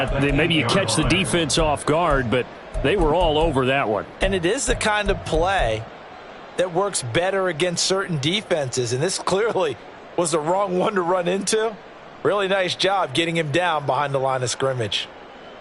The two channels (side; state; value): both; identical; correlation 1.00